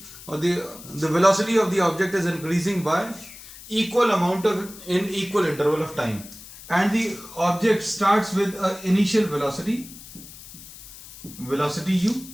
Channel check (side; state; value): left; noise; hiss, 17 dB below the sound